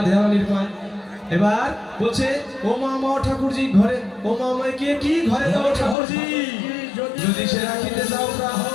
রানীর পায় এবার বলছে ও মা মা ঠাকুরজি ঘরে ও মা আমায় কে কি ঘরে দাও ঠাকুরজি যদি সে রাখিতে যাও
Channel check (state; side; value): drops out; right; at 6.0 s